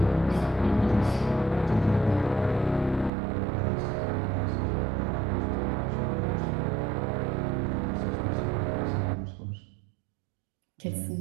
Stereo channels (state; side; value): drops out; left; at 3.1 s